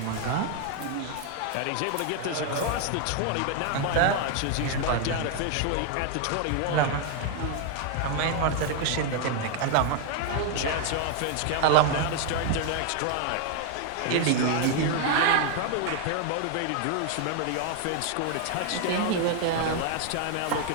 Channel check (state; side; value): different; both; correlation 0.01